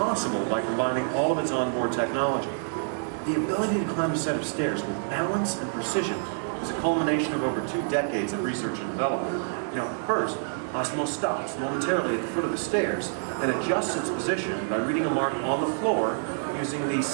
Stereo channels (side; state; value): left; silent; digital silence